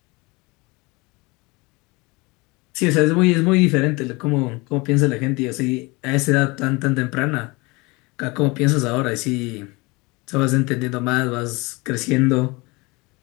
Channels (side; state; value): right; quieter; 25.3 dB